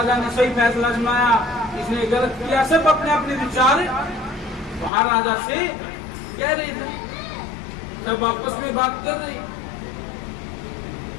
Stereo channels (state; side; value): drops out; right; at 4.9 s